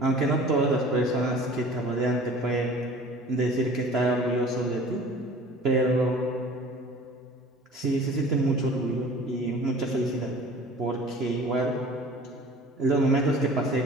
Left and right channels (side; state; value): both; normal; correlation 0.45